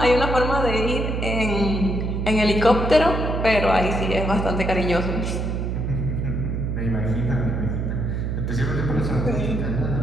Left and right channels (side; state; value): right; noise; hum, 1 dB below the sound